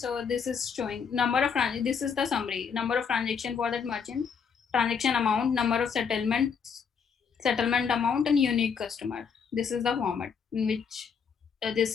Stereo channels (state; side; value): quieter; right; 6.4 dB